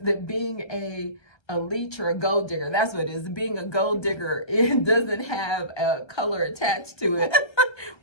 being a leech or a gold digger, that's what it is. Being a gold digger, it doesn't have a color attached to it,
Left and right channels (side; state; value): right; late; 1.3 ms